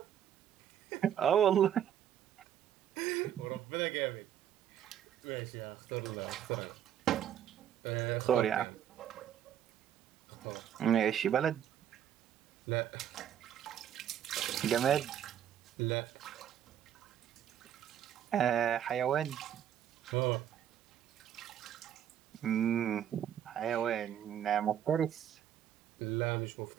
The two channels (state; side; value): quieter; left; 10.0 dB